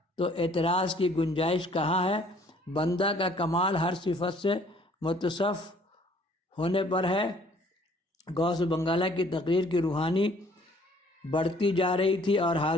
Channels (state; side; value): normal; both; correlation 0.58